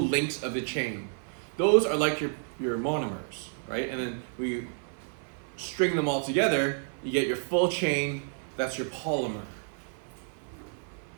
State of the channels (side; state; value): left; silent; 58 dB below the other